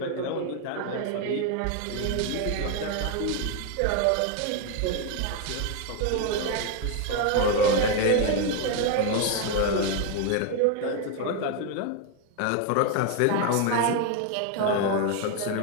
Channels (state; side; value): different; both; correlation 0.01